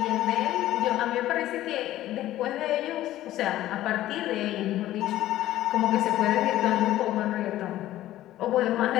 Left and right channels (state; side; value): quieter; right; 14.3 dB